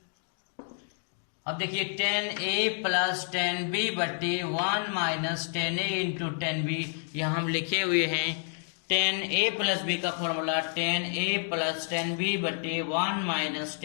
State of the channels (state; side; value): silent; right; 58 dB below the other